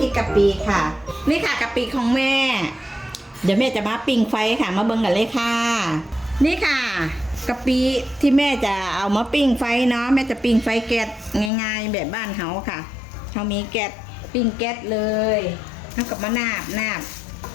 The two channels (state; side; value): drops out; right; at 11.5 s